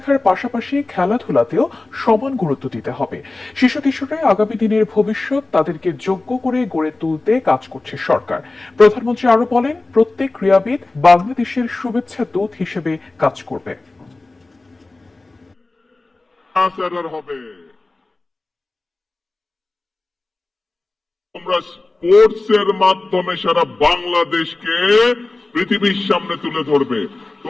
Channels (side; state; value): right; quieter; 3.2 dB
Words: পাশাপাশি খেলাধুলাতেও সমান গুরুত্ব দিতে হবে। শিশু কিশোররা আগামী দিনের ভবিষ্যৎ, তাদেরকে যোগ্য করে গড়ে তুলতে কাজ করছে সরকার। প্রধানমন্ত্রী আরো বলেন, প্রত্যেক ক্রীড়াবিদ বাংলাদেশের শুভেচ্ছা দূত হিসেবে কাজ করবে। তোমরা স্পোর্টস এর মাধ্যমে সারা বাংলাদেশকে পৃথিবীর সামনে তুলে ধরবে।